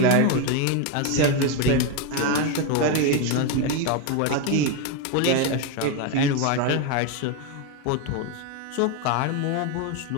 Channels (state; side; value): different; both; correlation 0.02